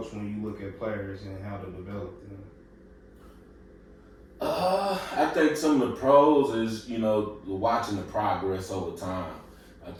when you look at players and how to develop them? I think some of the pros is, you know, watching the progress over time. I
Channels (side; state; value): both; identical; correlation 1.00